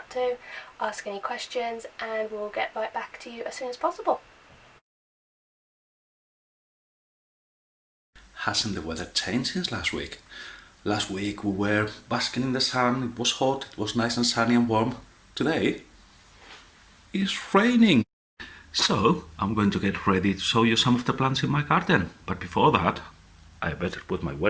to, ask any questions and we'll get right back to you as soon as possible. Hasn't the weather changed since last week? Last week we were basking in the sun, it was hot, it was nice and sunny and warm. Today it's raining. So I'm going to get ready to show you some of the plants in my garden. But before that, I better put my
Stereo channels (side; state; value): both; identical; correlation 1.00